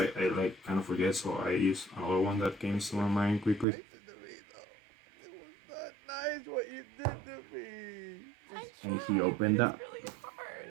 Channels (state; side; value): drops out; left; at 3.7 s